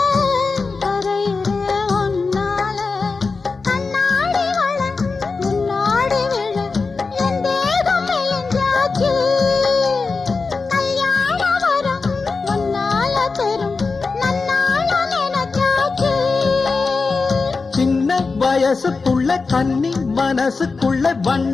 கரையிறே ஒன்னால கண்ணாடி வள முன்னாடி விழ என் தேகம் மெலிஞ்சாச்சு கல்யாண வரம் முன்னால தரும் நன்னால நினைச்சாச்சு சின்ன வயசுக்குள்ள கன்னி மனசுக்குள்ள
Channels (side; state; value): right; quieter; 4.3 dB